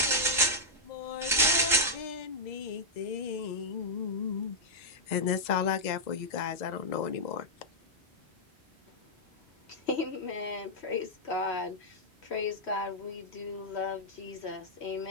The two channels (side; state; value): both; normal; correlation -0.06